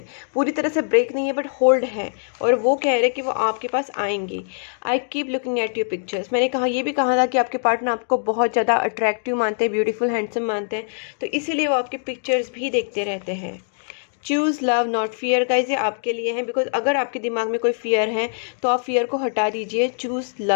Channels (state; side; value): silent; right; digital silence